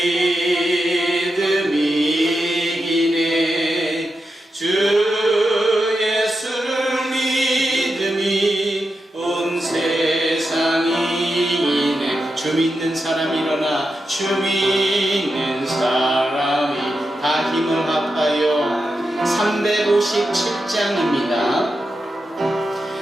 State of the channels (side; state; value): both; normal; correlation 0.88